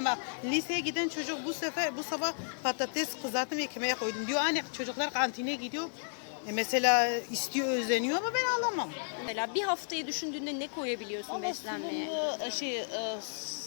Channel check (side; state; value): right; silent; 56 dB below the other